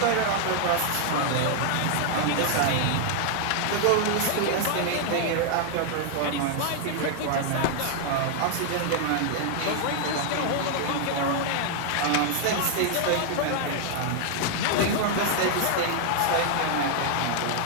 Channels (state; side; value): different; both; correlation 0.00